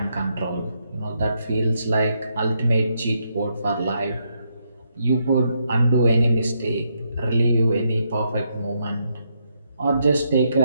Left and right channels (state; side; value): inverted; both; correlation -0.78